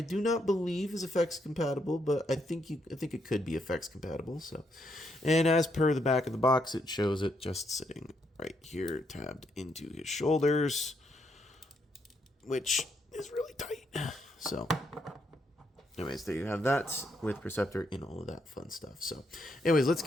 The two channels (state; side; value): normal; both; correlation 0.76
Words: not believe is effects compatible, but I think it could be effects compatible. So, and as per the back of the box, it shows it just sitting right here, tabbed into his shoulders, which is really tight. So, anyways, there you have that with Perceptor in all of that fun stuff. So, anyways, let's